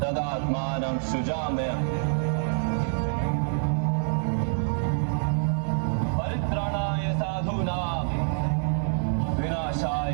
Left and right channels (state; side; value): silent; left; 60 dB below the other